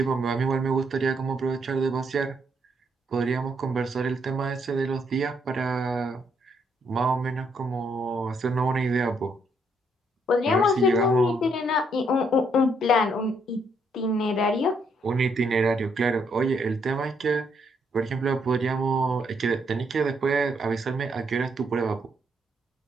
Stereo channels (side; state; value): both; normal; correlation 0.73